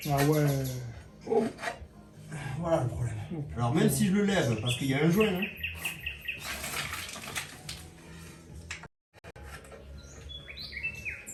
Ah ouais. oh, voilà le problème. Oh, Alors même si je le lève, parce qu'il y a un joint, hein,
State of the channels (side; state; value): both; identical; correlation 1.00